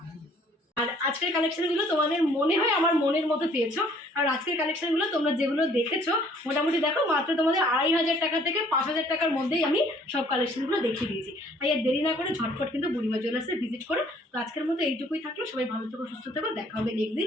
আর আজকের কালেকশনগুলো তোমাদের মনে হয় আমার মনের মতো পেয়েছো। আর আজকের কালেকশনগুলো তোমরা যেগুলো দেখেছো মোটামুটি দেখো মাত্র তোমাদের 2,500 টাকা থেকে 5,000 টাকার মধ্যেই আমি সব কালেকশনগুলো দেখিয়ে দিয়েছি। তাই আর দেরি না করে ঝটফট কিন্তু বুড়িমা জুয়েলার্সে ভিজিট করো। তো আজকের মতো এইটুকুই থাকলো, সবাই ভালো থেকো, সুস্থ থেকো, দেখা হবে নেক্সট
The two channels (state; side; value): normal; both; correlation 0.59